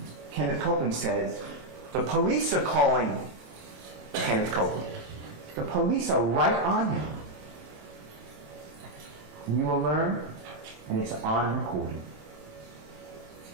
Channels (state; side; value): late; left; 27 ms